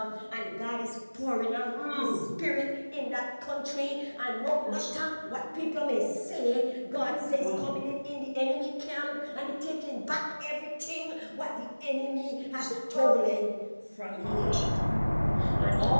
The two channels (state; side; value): inverted; both; correlation -1.00